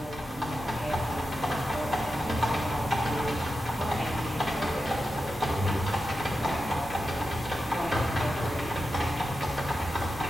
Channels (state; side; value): normal; both; correlation 0.90